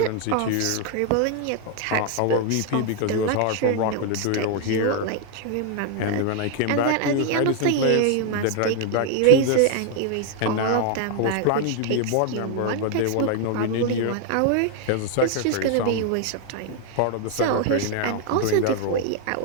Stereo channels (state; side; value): different; both; correlation 0.00